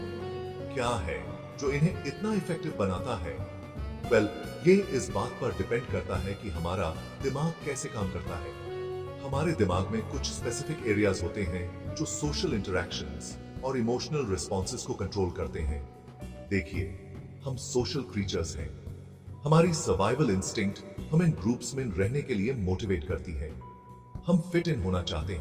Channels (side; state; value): both; identical; correlation 1.00